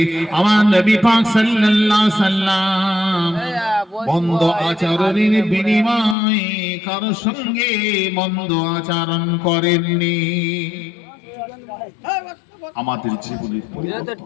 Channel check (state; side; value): drops out; right; at 6.2 s